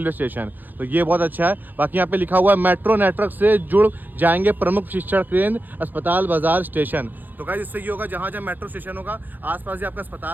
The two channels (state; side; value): late; left; 0.087 ms